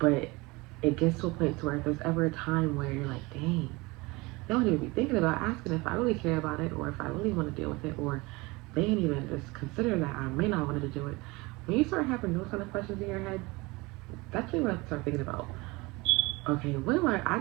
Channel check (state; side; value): quieter; left; 23.8 dB